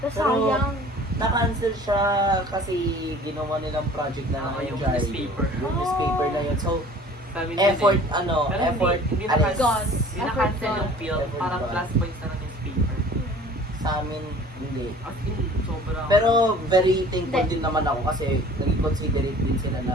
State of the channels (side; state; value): both; normal; correlation 0.47